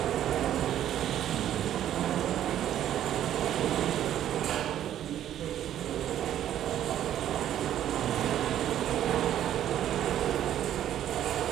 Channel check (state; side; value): quieter; left; 11.3 dB